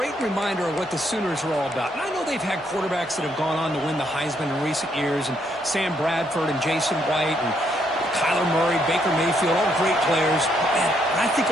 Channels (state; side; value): normal; both; correlation 0.73